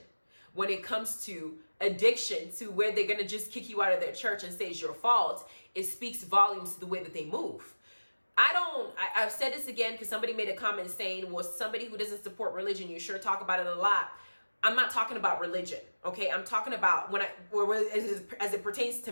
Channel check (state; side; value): inverted; both; correlation -1.00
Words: when it comes to addiction, to where they're going to just kick you out of their church and say it's your fault, it speaks volumes to the way that they move. I've said this again because somebody made a comment saying, well, somebody who doesn't support religion, you sure talk about it a lot. I'm not talking about religion, okay? I'm talking about as it pertains to